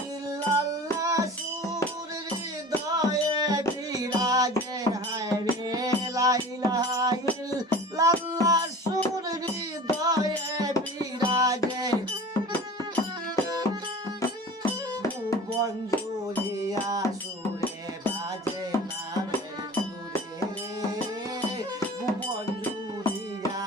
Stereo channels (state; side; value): normal; both; correlation 0.40